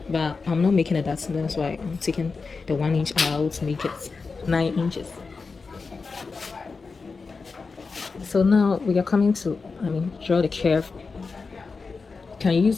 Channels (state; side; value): quieter; right; 4.5 dB